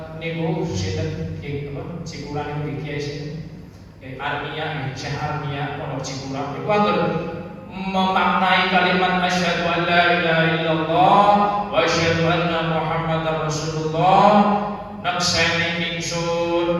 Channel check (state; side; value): identical; both; correlation 1.00